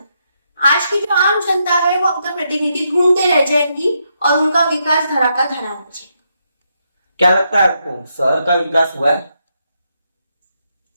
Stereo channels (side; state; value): both; inverted; correlation -0.80